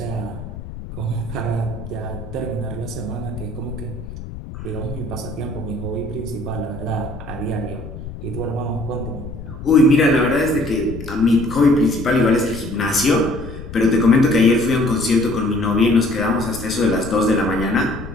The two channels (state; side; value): noise; left; rumble, 11 dB below the sound